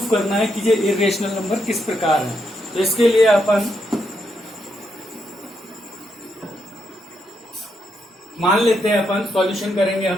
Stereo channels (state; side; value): normal; both; correlation 0.79